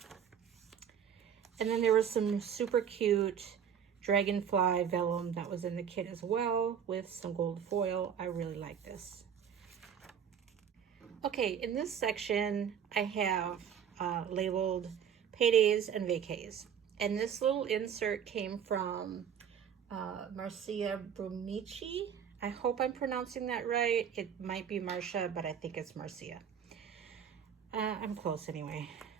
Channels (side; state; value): left; quieter; 8.2 dB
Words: And then there was some super cute dragonfly vellum that was in the kit as well with some gold foil. I really like this. Okay, in this section I have labeled paydays and vacays. And this little insert came from Marcia Brumicci. I hope I'm pronouncing that right. It might be Marcia, but I think it's Marcia. I'm close anyway.